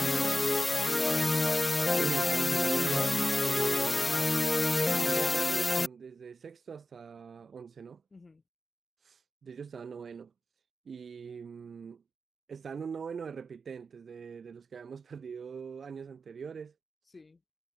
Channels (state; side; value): normal; both; correlation 0.97